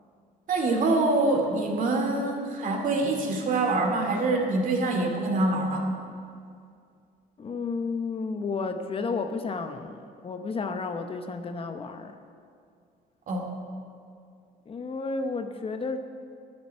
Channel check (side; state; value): both; normal; correlation 0.40